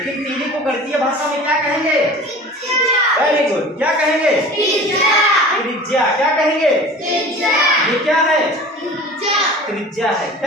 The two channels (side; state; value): both; normal; correlation 0.40